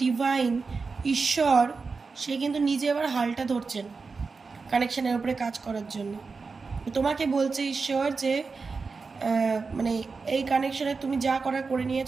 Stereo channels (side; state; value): left; quieter; 4.5 dB